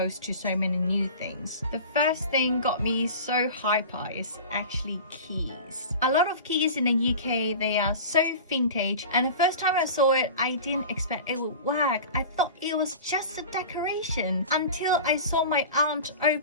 to so many new things. The first thing got me so hyper is actually keys. A lot of keys in the UK, they are so vintage, and the first time I saw it, I didn't expect it would work. I thought it was just a decoration until I saw my aunt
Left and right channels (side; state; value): both; inverted; correlation -0.35